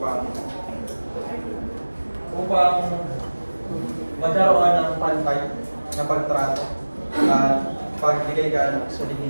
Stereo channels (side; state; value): both; inverted; correlation -1.00